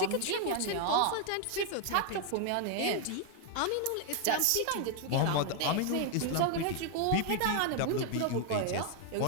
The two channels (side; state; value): both; different; correlation 0.00